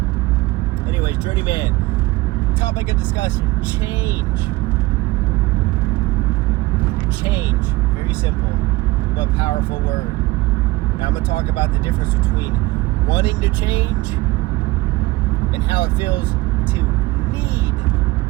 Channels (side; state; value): left; quieter; 20.2 dB